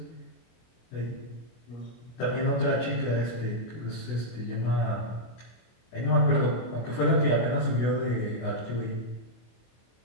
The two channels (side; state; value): right; late; 25 ms